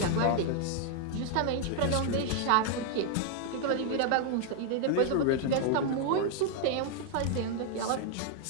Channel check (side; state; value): both; different; correlation 0.00